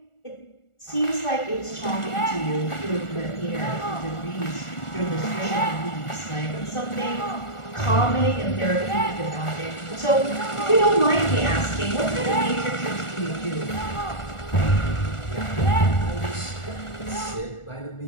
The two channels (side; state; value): right; late; 1.4 ms